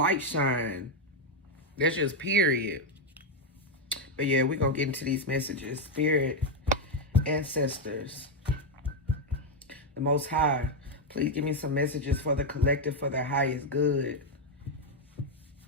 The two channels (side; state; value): both; normal; correlation 0.03